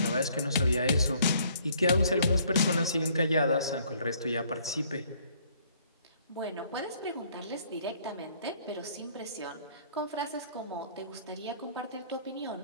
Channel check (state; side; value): inverted; both; correlation -0.62